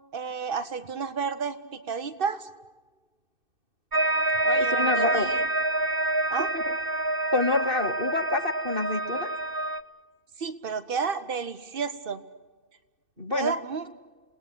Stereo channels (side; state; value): left; late; 2.6 ms